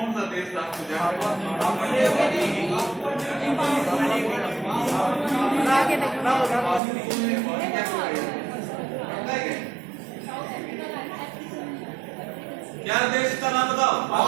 सा देश था जहां क्या देश का नाम बताओ?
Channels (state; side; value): drops out; left; at 6.8 s